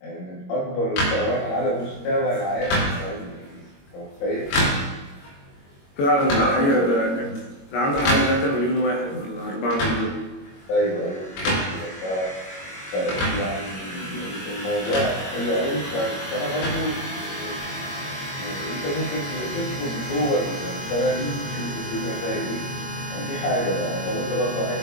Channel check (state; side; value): late; right; 21 ms